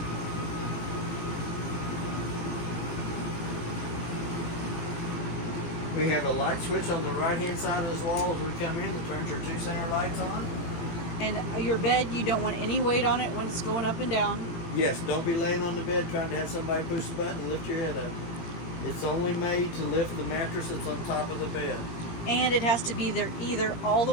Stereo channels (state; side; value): late; right; 17 ms